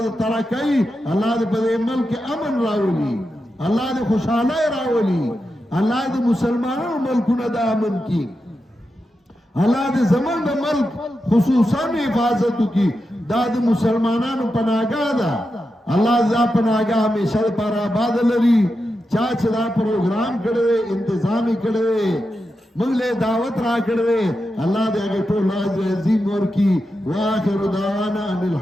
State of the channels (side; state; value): both; normal; correlation 0.89